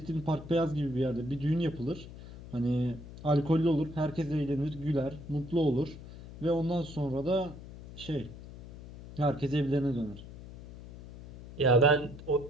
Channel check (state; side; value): noise; left; hum, 15 dB below the sound